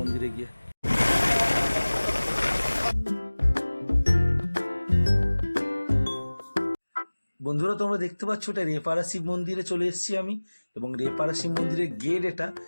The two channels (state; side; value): inverted; both; correlation -1.00